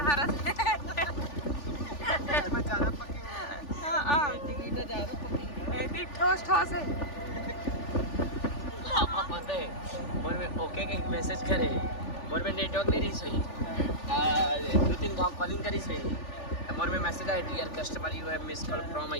हरस ठोस ठोस है। पता है मोर में ओके के मैसेज करे मोर में नेटवर्क नहीं रही सही 2-3 गांव कॉलिंग करी सही मोर में मैसेज आया dear customer you have miss call from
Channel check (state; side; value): late; right; 3.4 ms